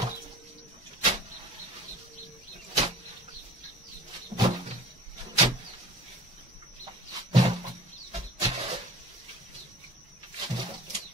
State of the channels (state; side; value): normal; both; correlation 0.43